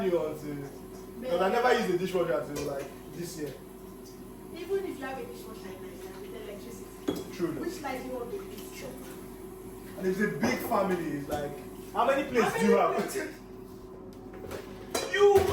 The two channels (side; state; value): both; identical; correlation 1.00